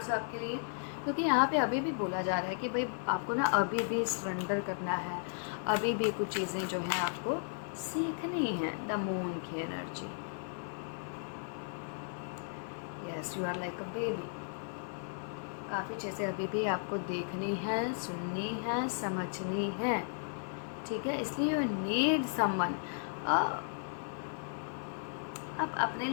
आपके लिए, क्योंकि यहाँ पे अभी भी बोला जा रहा है कि भाई आपको ना अभी भी सरेंडर करना है, अभी भी कुछ चीज़ें जो हैं आपको सीखनी है। द मून की energy, yes you are like a baby, काफ़ी चीज़ें अभी भी आपको देखनी है, सुननी है, समझनी है, ठीक है। इसलिए यू नीड समवन। आप अपने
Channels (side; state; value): right; silent; 54 dB below the other